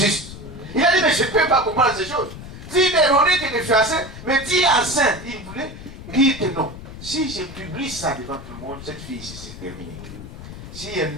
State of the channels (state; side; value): noise; left; rumble, 13 dB below the sound